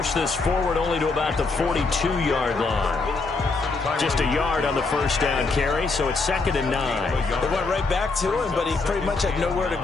this forward only to about the 42-yard line. Just a yard on the first down carry, so it's 2nd and 9. They went right back to him, but he pretty much had nowhere to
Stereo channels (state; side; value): quieter; right; 3.9 dB